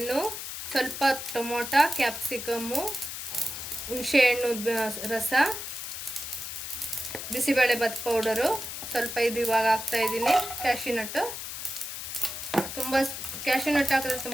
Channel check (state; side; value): noise; left; hiss, 7 dB below the sound